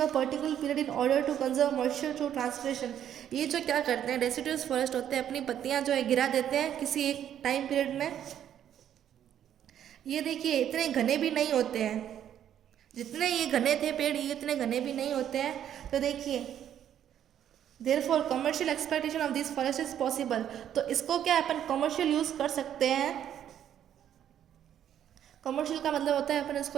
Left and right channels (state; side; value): quieter; left; 10.2 dB